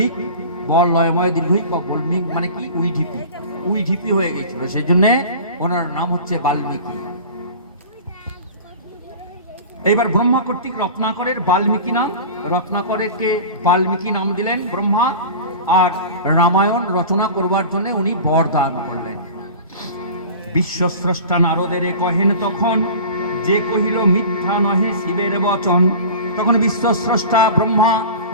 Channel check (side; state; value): both; inverted; correlation -0.37